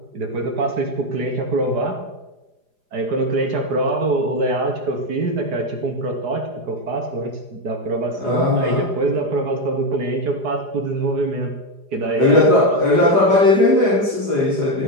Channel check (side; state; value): left; late; 4.9 ms